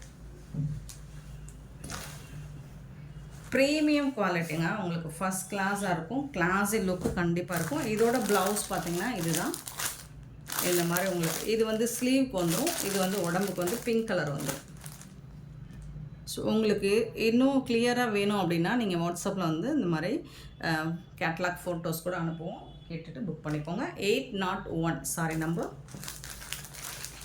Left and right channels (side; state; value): both; identical; correlation 1.00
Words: ப்ரீமியம் குவாலிட்டிங்க. உங்களுக்கு ஃபஸ்ட் கிளாஸாக இருக்கும். கிளாஸி லுக்கு கண்டிப்பாக இருக்கும். இதோட ப்ளவுஸ் பார்த்திங்கன்னா இதுதான். இந்த மாதிரி உங்களுக்கு இது வந்து ஸ்லீவுக்கு வந்துடும். இது வந்து உடம்புக்கு வந்து பிங்க் கலர் வந்துடும். ஸோ உங்களுக்கு இன்னும் கிளியராக வேணும் அப்படின்னா நீங்கள் வாட்ஸ்அப்பில் வந்து இந்த மாதிரி கேட்லாக் ஃபோட்டோஸ் கூட அனுப்புவோம். கேட்டுட்டு புக் பண்ணிக்கோங்க. 801 சாரி நம்பர்.